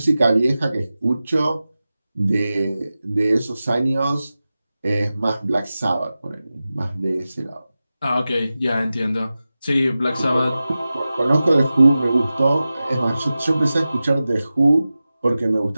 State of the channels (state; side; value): inverted; both; correlation -0.95